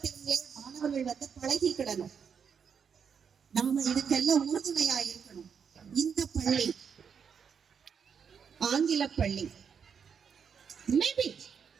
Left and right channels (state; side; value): quieter; left; 6.9 dB